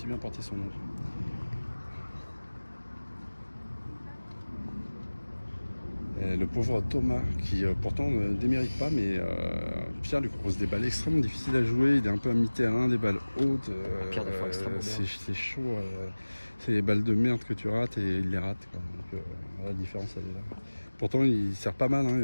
bien porté son nom. Et le pauvre Thomas, qui pourtant ne démérite pas, mais Pierre lui propose des balles extrêmement difficiles à jouer. Il est un peu à mi-terrain, des balles hautes. C'est chaud. C'est les balles de merde que tu rates et il les rate. Quoi. Donc, la différence, elle est là. Pourtant, il sert pas mal. Hein, il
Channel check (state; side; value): inverted; both; correlation -1.00